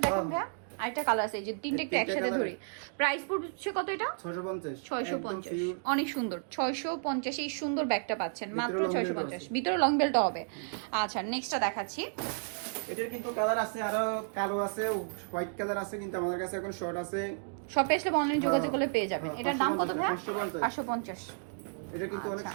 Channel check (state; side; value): silent; left; digital silence